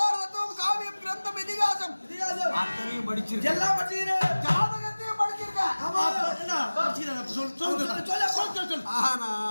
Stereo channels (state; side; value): inverted; both; correlation -1.00